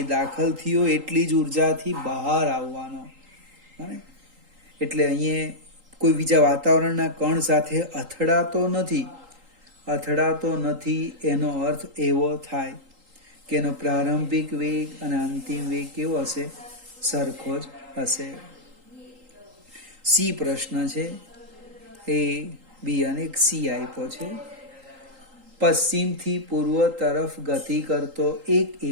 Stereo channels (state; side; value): late; left; 3.8 ms